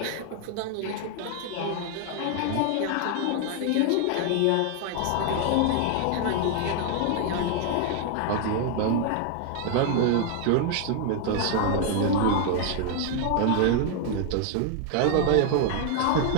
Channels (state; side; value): different; both; correlation 0.00